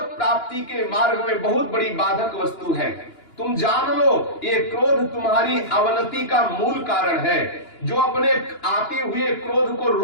प्राप्ति के मार्ग में बहुत बड़ी बाधक वस्तु है। तुम जान लो, ये क्रोध तुम्हारी अवनति का मूल कारण है। जो अपने आते हुए क्रोध को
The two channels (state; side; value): late; right; 2.9 ms